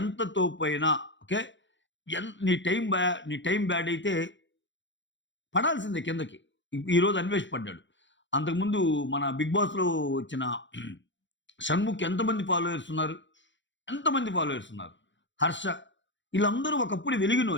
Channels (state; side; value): late; right; 0.54 ms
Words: తోపైనా ఓకే. నీ టైం బ్యాడ్ అయితే పడాల్సిందే కిందకి. ఈరోజు అన్వేష్ పడ్డాడు. అంతకుముందు మన 'బిగ్ బాస్‌లో' వచ్చిన షణ్ముఖ్ ఎంతమంది ఫాలోవర్స్ ఉన్నారు? ఎంతమంది ఫాలోవర్స్ ఉన్నారు? హర్ష ఈళ్ళందరూ ఒకప్పుడు